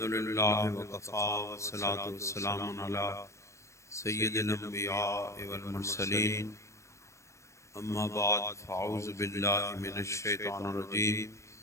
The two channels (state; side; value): late; right; 0.14 ms